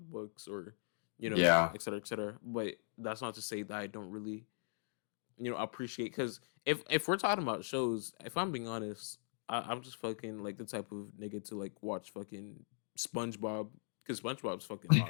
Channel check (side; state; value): right; silent; digital silence